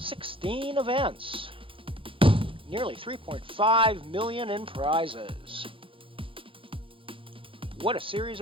events. Nearly $3.5 million in prizes. What a series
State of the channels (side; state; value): left; late; 0.25 ms